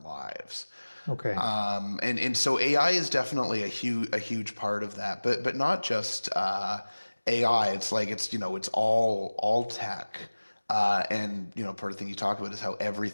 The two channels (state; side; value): inverted; both; correlation -1.00